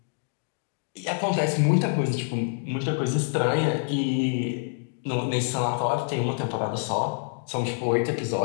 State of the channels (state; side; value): silent; right; 61 dB below the other